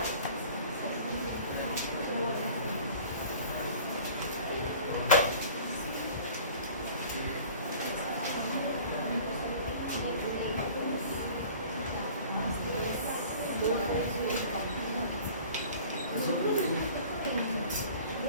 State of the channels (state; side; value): inverted; both; correlation -0.46